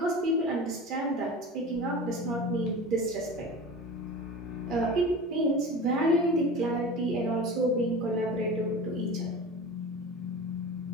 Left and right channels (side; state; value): both; normal; correlation 0.33